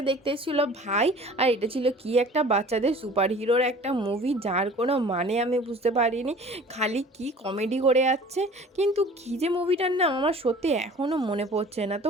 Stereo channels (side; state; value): both; normal; correlation 0.46